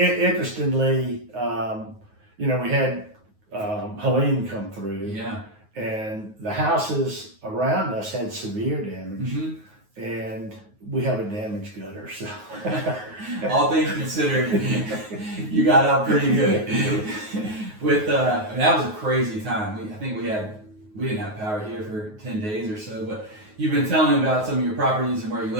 we had Helene come through, Yeah. and the houses around us had severe damage, and we have a damaged gutter. So, all things considered, you got out pretty good. With that was a crazy time. I think we didn't have power here for 10 days or so, but you've been telling me about some of your properties and where you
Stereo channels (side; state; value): left; late; 9.4 ms